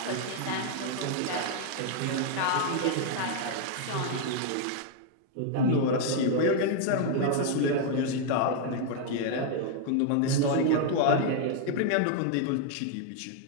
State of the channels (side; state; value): both; different; correlation 0.00